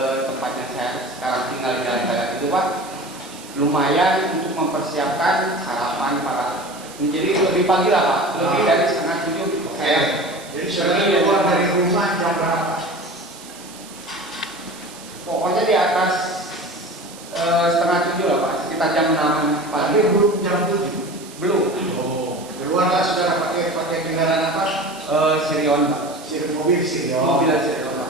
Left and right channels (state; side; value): noise; right; hiss, 18 dB below the sound